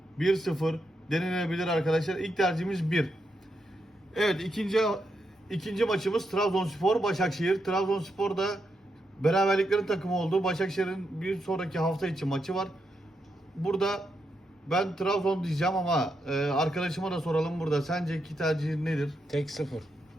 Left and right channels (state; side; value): normal; both; correlation 0.83